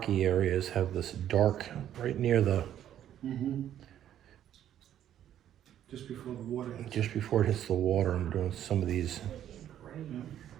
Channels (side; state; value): left; quieter; 10.9 dB